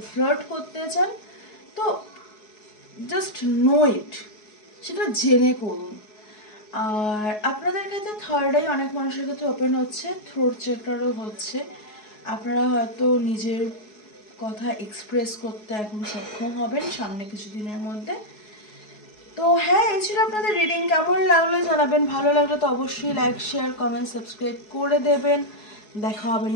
ফ্লার্ট করতে চান, তো জাস্ট নো ইট, সেটা জেনে করুন। আর আপনাদের ক্ষেত্রে থার্ড আই অনেক মানুষের ক্ষেত্রে ওপেন হচ্ছে, থ্রোট চেকটারও হচ্ছে। আপনারা হয়তো নিজের কথা এক্সপ্রেস করতে এখন সক্ষম হবেন সামনে কিছুদিনের মধ্যে। তো হ্যাঁ, এই ছিল আপনাদের রিডিং। কেমন লাগলো জানাবেন, ভালো লাগলে তো অবশ্যই লাইক, শেয়ার, কমেন্ট, সাবস্ক্রাইব করে দেবেন। দেখা হবে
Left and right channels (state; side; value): late; right; 4.7 ms